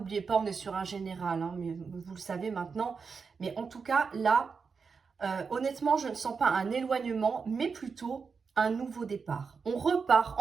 pas, on est sur un général, hein, mais vous le savez maintenant. Mais en tout cas, là, honnêtement, je ne sens pas un éloignement, mais plutôt un nouveau départ. On repart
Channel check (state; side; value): quieter; left; 5.3 dB